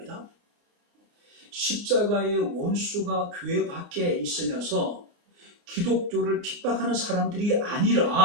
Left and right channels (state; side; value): late; left; 29 ms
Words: 십자가의 원수가 교회 밖에 있으면서 기독교를 핍박하는 사람들이